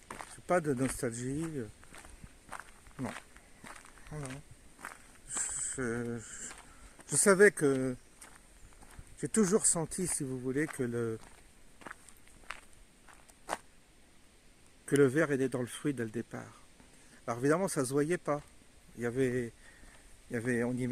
Je suis pas de nostalgie, non. Non. Je savais que j'ai toujours senti, si vous voulez, que le verre était dans le fruit dès le départ. Alors évidemment, ça se voyait pas. On y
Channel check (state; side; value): identical; both; correlation 1.00